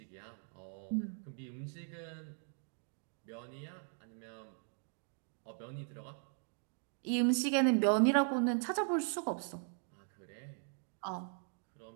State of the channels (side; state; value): left; silent; 52 dB below the other